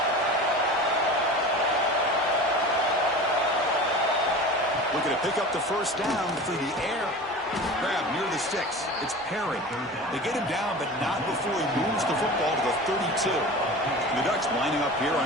Looking to pick up the 1st down through the air. Grab near the sticks. It's Perry. They get him down, but not before he moves the football to the 32. And the Ducks lining up here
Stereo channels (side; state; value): both; normal; correlation 0.35